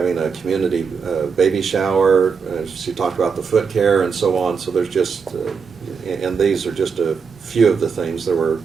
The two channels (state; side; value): quieter; left; 5.7 dB